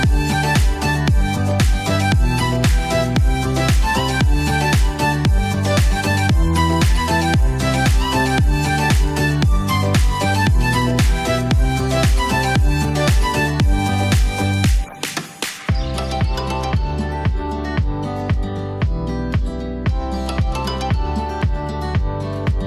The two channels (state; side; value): identical; both; correlation 1.00